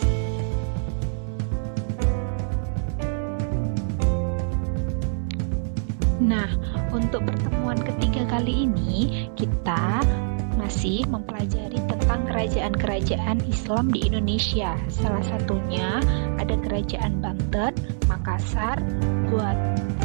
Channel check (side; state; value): left; silent; 62 dB below the other